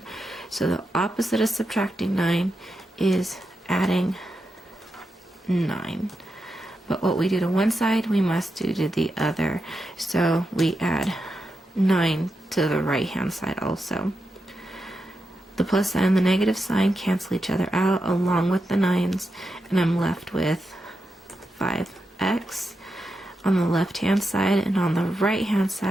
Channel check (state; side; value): normal; both; correlation 0.87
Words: So the opposite of subtracting 9 is adding 9. But what we do to one side, we must do to the other. So we add 9 to the right hand side also. The plus sign and the negative sign cancel each other out along with the 9s, and I'm left with 5x on the left hand side, and on the right hand